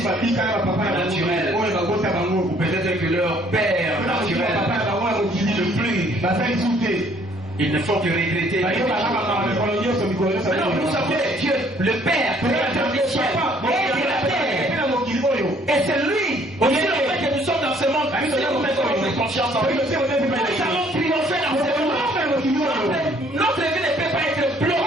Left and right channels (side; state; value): both; normal; correlation 0.61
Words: naturel. Ou peut-être que leur père naturel ne plus. Ils ne font que regretter. Non, nous savons que Dieu, le Père, Créateur du ciel et de la terre. Et c'est lui, aussi le fait que nous sommes dans ce monde, nous devons mettre notre conscience en lui. Nous allons triompher dans ce monde. Notre vie ne peut pas être